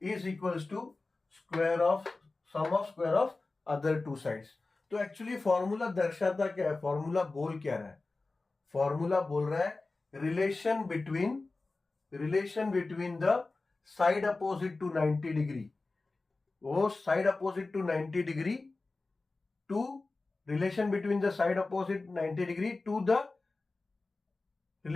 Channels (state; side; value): quieter; right; 3.5 dB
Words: is equals to square of sum of square of other two sides. तो एक्चुअली फॉर्मूला दर्शाता क्या है? फॉर्मूला बोल क्या रहा है? फॉर्मूला बोल रहा है relation between the side opposite to 90 degree, वो side opposite to 90 degree to relation between the side opposite 90 degree to the